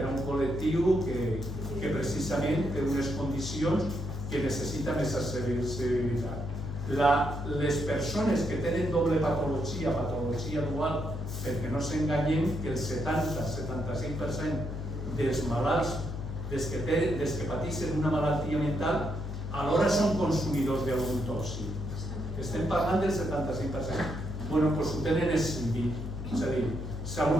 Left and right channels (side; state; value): left; noise; hum, 6 dB below the sound